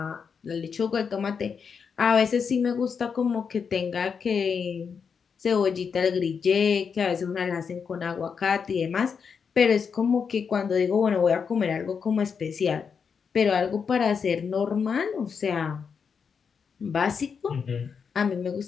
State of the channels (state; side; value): quieter; right; 6.2 dB